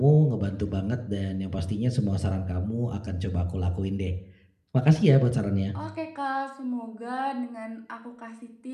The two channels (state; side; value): identical; both; correlation 1.00